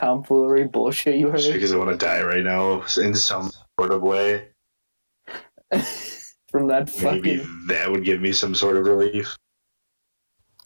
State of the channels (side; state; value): both; inverted; correlation -1.00